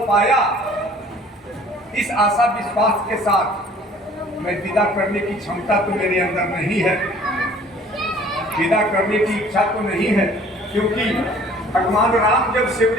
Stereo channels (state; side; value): normal; both; correlation 0.52